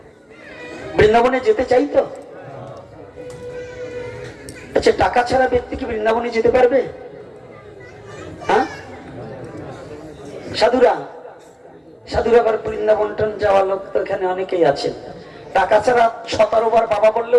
বৃন্দাবনে যেতে চাই তো? আচ্ছা, টাকা ছাড়া ব্যক্তি কি বৃন্দাবনে যেতে পারবে? হ্যাঁ, সাধুরা সাধুরা আবার বৃন্দাবন যাওয়ার লোক তো এখানে অনেকেই আছেন। টাকা ছাড়া 17 বার বাবা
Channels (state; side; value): identical; both; correlation 1.00